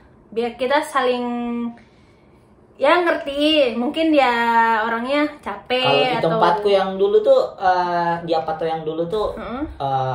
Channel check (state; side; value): identical; both; correlation 1.00